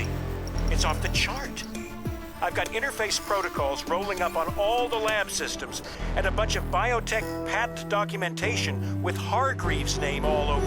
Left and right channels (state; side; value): identical; both; correlation 1.00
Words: It's off the chart. I've got interface protocols rolling up on all the lab systems and a bunch of biotech patent documentation with Hargreaves' name all